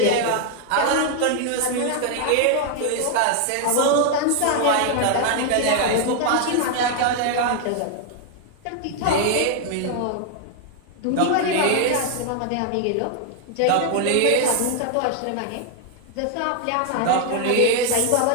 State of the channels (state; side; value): different; both; correlation 0.00